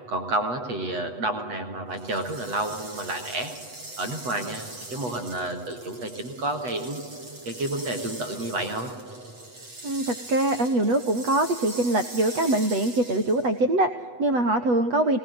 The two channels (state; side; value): late; left; 8.2 ms